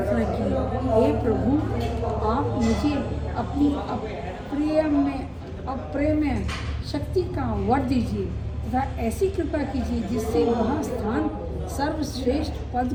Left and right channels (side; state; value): both; identical; correlation 1.00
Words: की, हे प्रभु, आप मुझे अपनी अप्रेम्य शक्ति का वर दीजिए तथा ऐसी कृपा कीजिए जिससे वह स्थान सर्वश्रेष्ठ पद